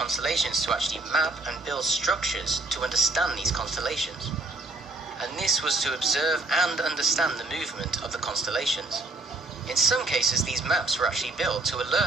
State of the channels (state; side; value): quieter; left; 3.1 dB